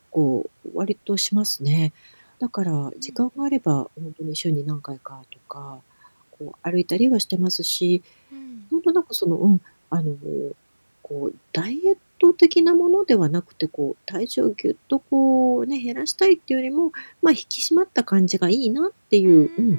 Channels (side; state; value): both; inverted; correlation -1.00